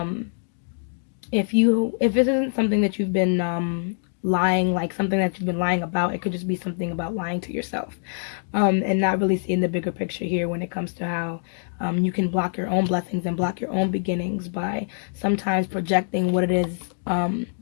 If this isn't something that you've been lying, like something that you've been lying about, it could just be something about lying to yourself, and not really seeing the bigger picture here when it comes to how you can block your own blessings and block your own beginnings by sometimes projecting what it is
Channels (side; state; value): right; silent; digital silence